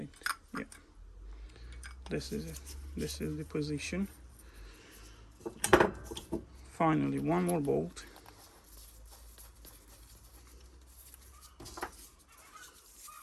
Yeah, this is it. This is the position. Finally, one more bolt.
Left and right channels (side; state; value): both; identical; correlation 1.00